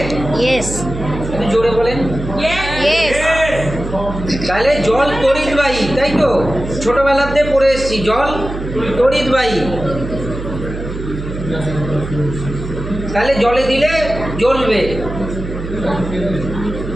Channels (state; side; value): noise; right; hum, 8 dB below the sound